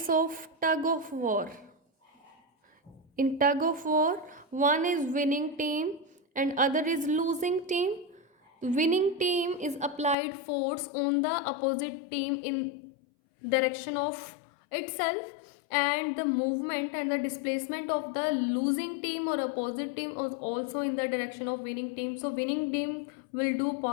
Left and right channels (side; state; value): right; drops out; at 10.2 s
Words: of tug of war. In tug of war, one is winning team and other is losing team. The winning team is applied force on the opposite team in direction of itself, and the movement and the displacement of the losing team or opposite team is also in the direction of winning team. So winning team will do